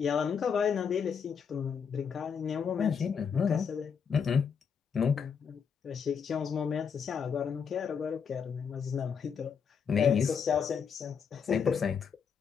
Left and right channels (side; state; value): right; quieter; 6.7 dB